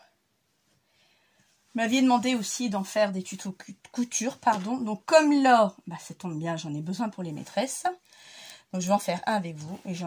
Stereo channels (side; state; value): both; identical; correlation 1.00